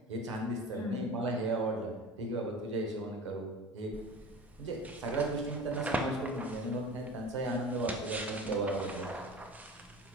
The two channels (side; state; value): both; normal; correlation 0.36